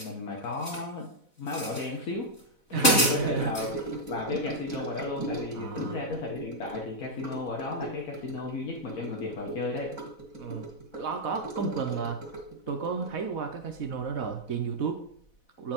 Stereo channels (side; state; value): right; late; 4.1 ms